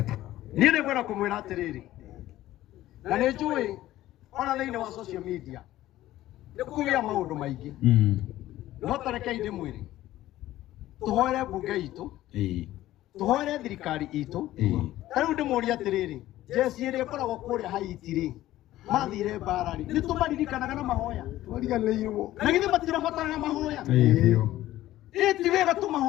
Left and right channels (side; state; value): right; quieter; 14.9 dB